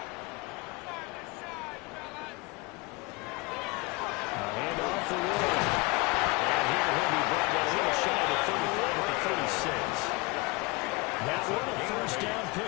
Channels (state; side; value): quieter; right; 25.5 dB